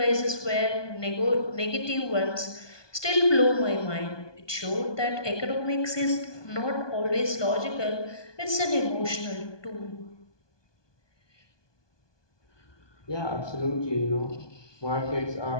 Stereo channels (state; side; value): late; right; 1.2 ms